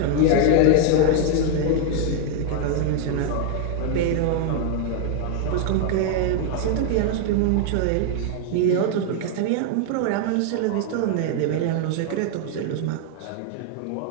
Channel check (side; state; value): both; different; correlation 0.00